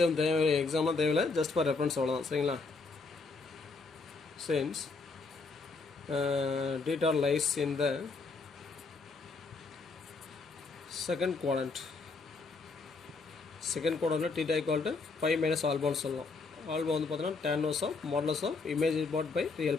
தேவை, எக்ஸாம்லாம் தேவையில்லை, ஜஸ்ட் ஃபார் ரெஃபரன்ஸ் அவ்வளோதான். சரிங்களா, since data lies in the second quadrant. Second குவாட்ரண்ட்டில் theta equal to pi minus ஆல்பான்னு சொல்லலாம். ஆல்பா வந்து பார்த்தீங்கன்னா tan inverse of modulus of imaginary part by real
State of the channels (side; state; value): right; quieter; 4.0 dB